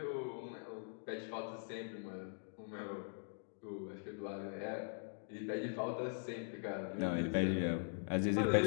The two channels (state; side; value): silent; right; digital silence